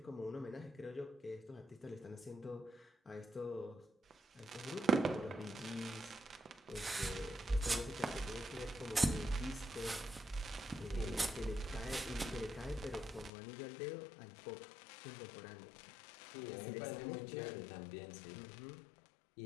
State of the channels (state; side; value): drops out; right; at 13.3 s